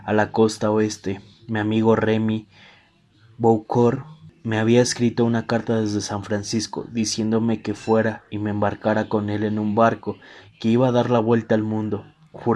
a la costa oeste. Mi amigo Remy Boucourt me había escrito una carta desde San Francisco diciéndome que fuera y me embarcara con él en un barco que iba a dar la vuelta al mundo.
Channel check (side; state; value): both; identical; correlation 1.00